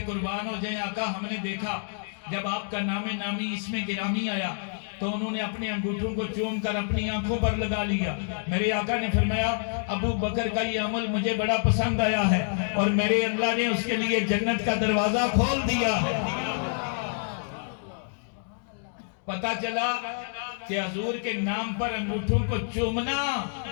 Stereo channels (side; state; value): right; silent; digital silence